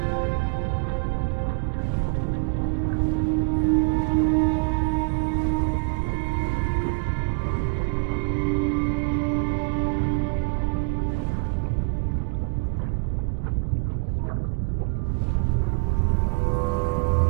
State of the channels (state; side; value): quieter; left; 35.9 dB